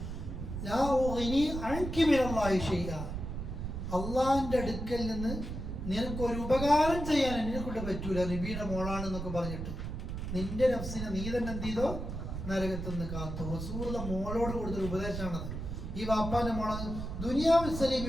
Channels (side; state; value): right; noise; rumble, 6 dB below the sound